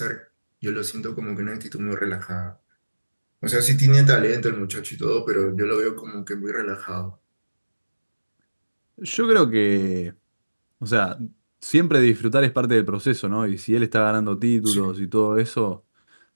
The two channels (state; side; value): inverted; both; correlation -1.00